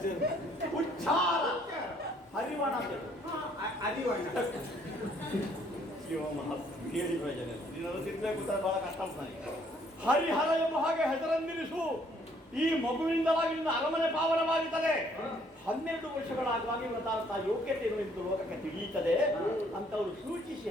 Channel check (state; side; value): normal; both; correlation 0.64